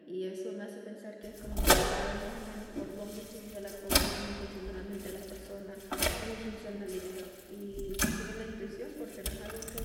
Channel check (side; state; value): both; identical; correlation 1.00